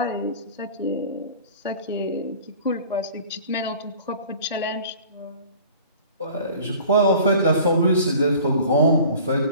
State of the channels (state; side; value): inverted; both; correlation -0.46